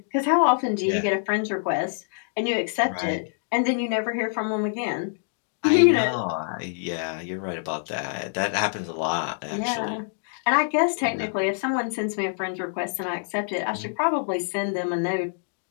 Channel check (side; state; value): right; silent; digital silence